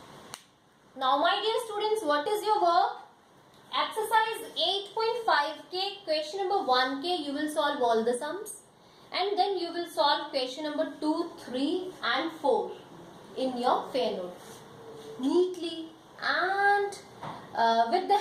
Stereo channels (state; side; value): identical; both; correlation 1.00